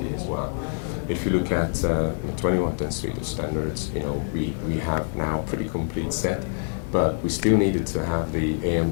as well. If you look at the 2110 suite of standards, we have now a pretty complete set, but we still needed to have the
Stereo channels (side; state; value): right; silent; 61 dB below the other